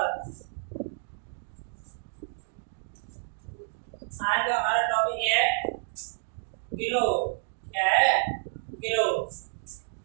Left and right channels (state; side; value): silent; left; digital silence